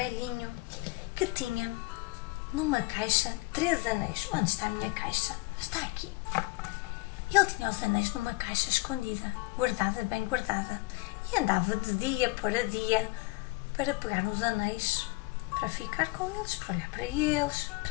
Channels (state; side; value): quieter; right; 24.3 dB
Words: que tinha numa caixa 3 anéis. Onde está a minha caixa? Está aqui. Ele tinha os anéis numa caixa escondida, guardada, bem guardada, e andava de dia para dia para pegar nos anéis, para ficar com eles, para olhar para eles,